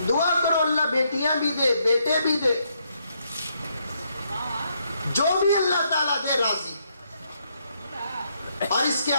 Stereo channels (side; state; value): both; inverted; correlation -0.75